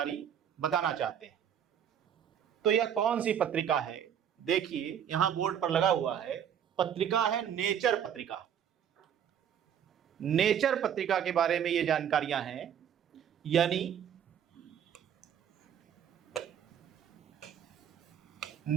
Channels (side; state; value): left; quieter; 9.0 dB